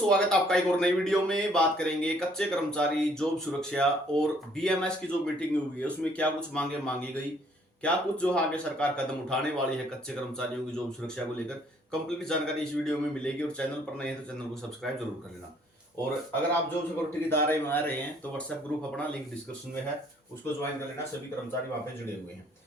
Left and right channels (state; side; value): normal; both; correlation 0.63